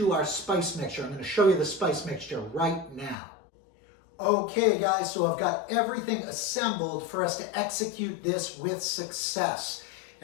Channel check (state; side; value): drops out; right; at 3.2 s